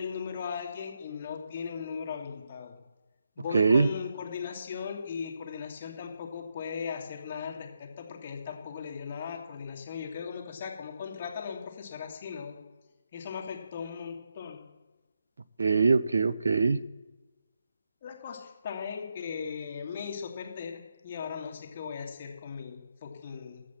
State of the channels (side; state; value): both; inverted; correlation -0.83